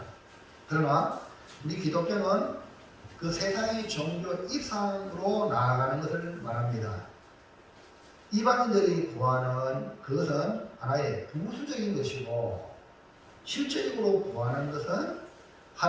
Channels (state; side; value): identical; both; correlation 1.00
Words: 그러나 우리 기독교는 그 세상의 종교 이상으로 나아가는 것을 말합니다. 이방인들이 구하는 그것은 하나의 부수적인 것이고 실제적으로 구하는 것은